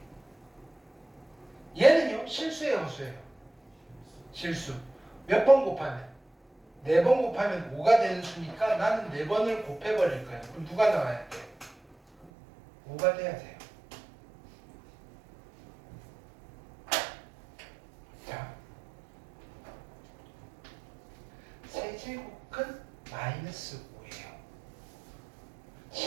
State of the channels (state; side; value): drops out; left; at 12.3 s